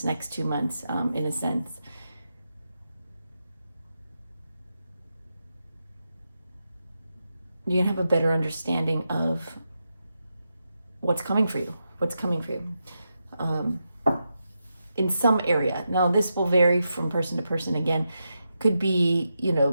next 2 months, in a sense. You're going to have a better understanding of what's coming for you, in some area. Now, this will vary from person to person. Again, could be,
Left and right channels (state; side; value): inverted; both; correlation -0.87